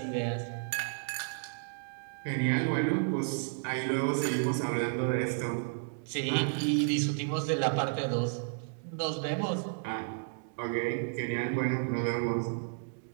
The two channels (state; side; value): silent; left; digital silence